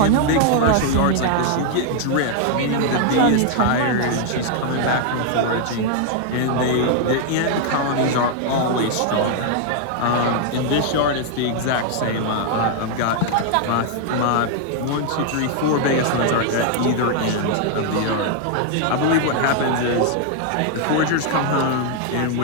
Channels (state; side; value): different; both; correlation 0.00